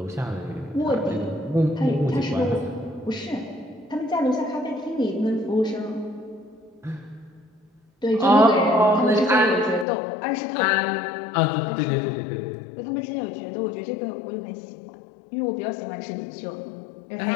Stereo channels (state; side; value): drops out; right; at 9.9 s